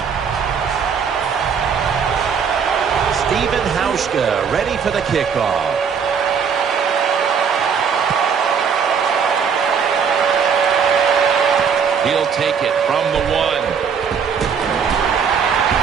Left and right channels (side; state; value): left; quieter; 6.6 dB